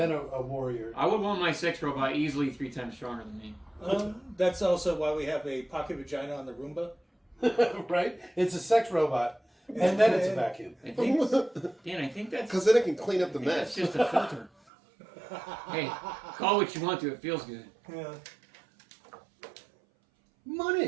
a warrior. I would want my sex robot easily 3 times stronger than me. That's also why we have a pocket vagina on the Roomba. Right? It's a sex robot. And then it's a vacuum. I think, Dan, I think that's Because then it can clean up the that's mess. just a filter. Hey, call what you want to. It feels good. Yeah.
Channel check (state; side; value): drops out; left; at 14.5 s